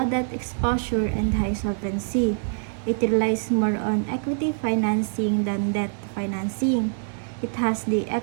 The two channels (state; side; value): silent; left; 62 dB below the other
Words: debt exposure and high solvency. It relies more on equity financing than debt financing. It has the